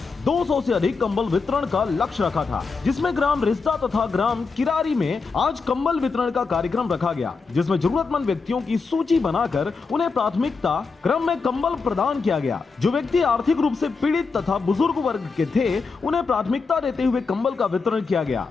200 से अधिक कंबल वितरण का लक्ष्य रखा था, जिसमें ग्राम रिश्ता तथा ग्राम किरारी में आज कंबल वितरण का कार्यक्रम रखा गया, जिसमें जरूरतमंद व्यक्तियों की सूची बनाकर उन्हें प्राथमिकता क्रम में कंबल प्रदान किया गया। जो व्यक्ति आर्थिक रूप से पीड़ित तथा बुजुर्ग वर्ग के थे, उन्हें प्राथमिकता देते हुए कंबल का वितरण किया गया।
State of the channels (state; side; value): quieter; right; 4.6 dB